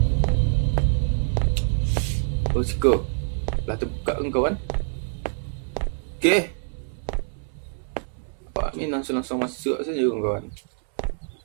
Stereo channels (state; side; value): silent; left; 62 dB below the other